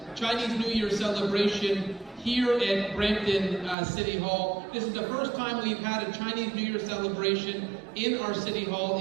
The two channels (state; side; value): drops out; left; at 3.8 s